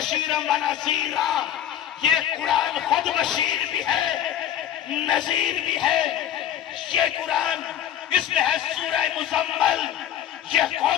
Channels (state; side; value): quieter; right; 10.7 dB